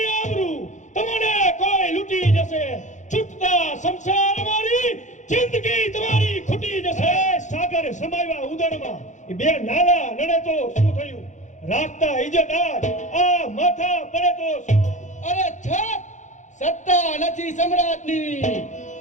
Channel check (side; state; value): right; late; 0.35 ms